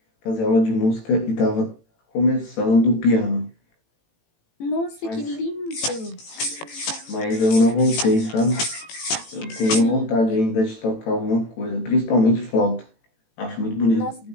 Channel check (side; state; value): right; late; 18 ms